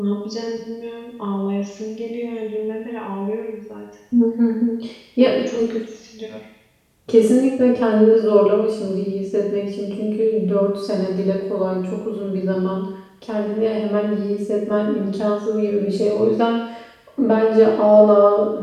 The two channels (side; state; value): both; identical; correlation 1.00